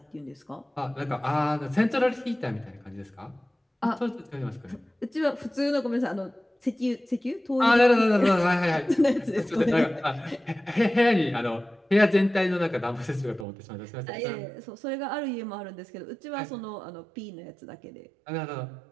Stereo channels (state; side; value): drops out; left; at 13.5 s